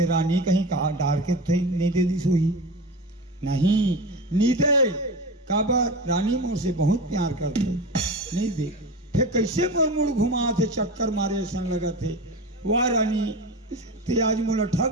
रानी कहीं कहा डार के थे नहीं दे दी सोई नहीं नीदे काबर रानी मोर से बहुत प्यार करते नहीं दे फिर कैसे मोर मुड़ घुमा थे चक्कर मारे ऐसा लगा थे। वाह रानी ते आज मोला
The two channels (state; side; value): normal; both; correlation 0.28